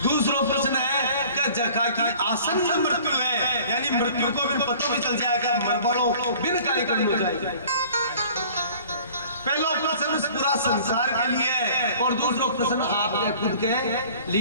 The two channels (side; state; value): both; inverted; correlation -0.49